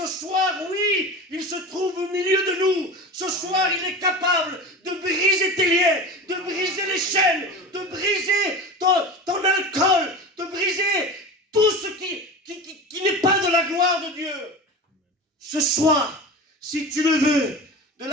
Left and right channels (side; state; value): both; normal; correlation 0.31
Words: soir, oui, il se trouve au milieu de nous. Ce soir, il est capable de briser tes liens, de briser les chaînes, de briser ton alcool, de briser tout ce qui n'est pas de la gloire de Dieu. Ce soir, si tu le veux, de